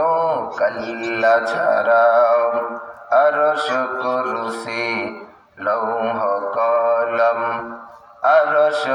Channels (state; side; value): identical; both; correlation 1.00